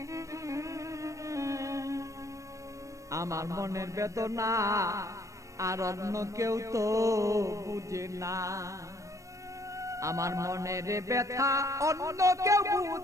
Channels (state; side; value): late; left; 0.15 ms